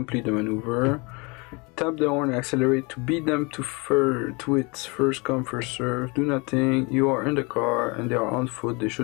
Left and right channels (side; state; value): right; quieter; 28.6 dB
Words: the maneuver. Tap the horn and accelerate to beat them to its first come, first serve. Do nothing. You are in the car and they are on foot. They